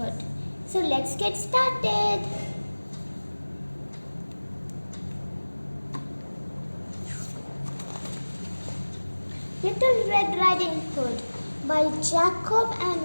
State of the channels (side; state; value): both; inverted; correlation -1.00